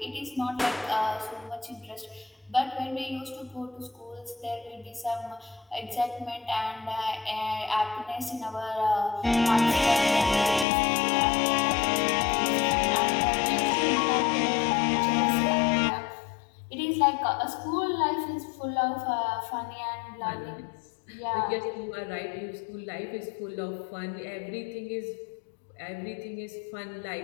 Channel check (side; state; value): right; drops out; at 10.7 s